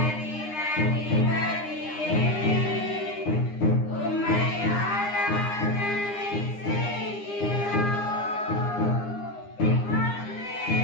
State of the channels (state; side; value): late; right; 9.8 ms